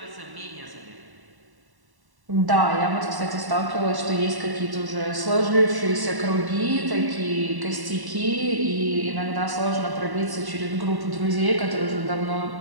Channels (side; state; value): left; late; 1.1 ms